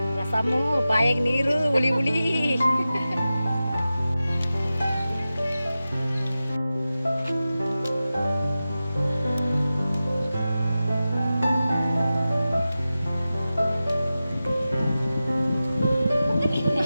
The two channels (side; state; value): both; inverted; correlation -0.94